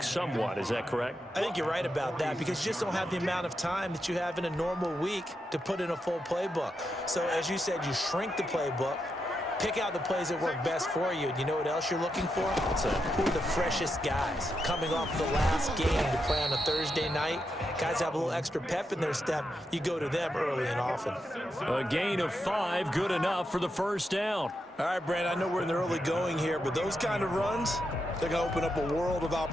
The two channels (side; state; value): both; normal; correlation 0.85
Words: somewhat. Is that correct? I think you're right about that because you just don't have the amount of time that you have in a normal week to put in a full playbook. So as you said, you shrink the playbook, pick out the plays that work best for you. And you know what else you're looking for? Who are the freshest guys coming off the last game to play on a Thursday night? Guys have a little extra pep in their step. You go to them early and often. A gain of 5, good enough for the first down. All right, Brandon, I know we're in the early going here, but those kind of runs, they're going to open up a world of